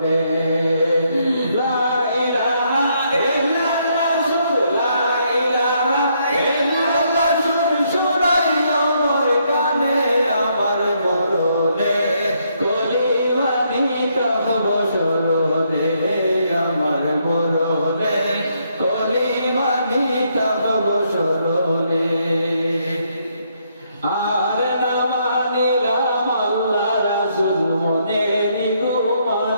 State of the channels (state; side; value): inverted; both; correlation -0.73